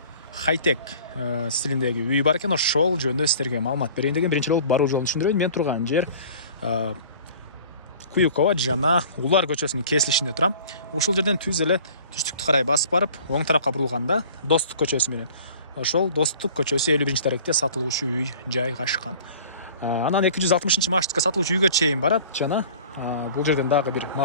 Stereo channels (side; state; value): both; inverted; correlation -0.46